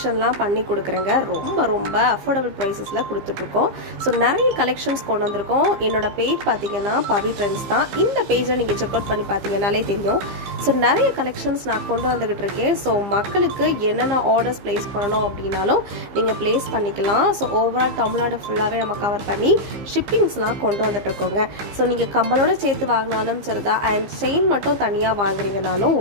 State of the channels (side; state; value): left; late; 15 ms